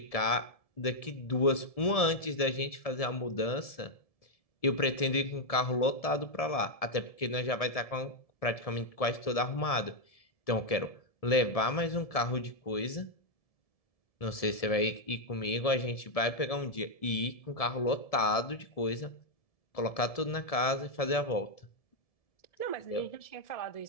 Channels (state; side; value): late; right; 1.7 ms